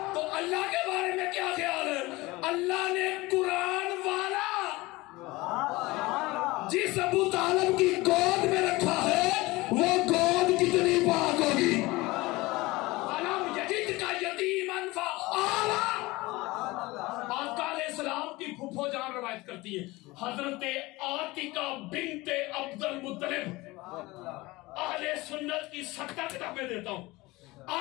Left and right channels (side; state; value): right; quieter; 21.2 dB